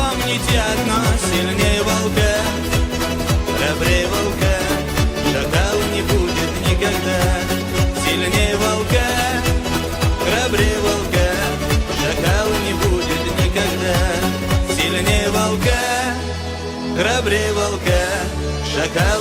одно: сильнее волка, храбрее волка, шакал не будет никогда. Сильнее волка, храбрее волка, шакал не будет никогда. Сильнее волка, храбрее волка,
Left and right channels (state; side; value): identical; both; correlation 1.00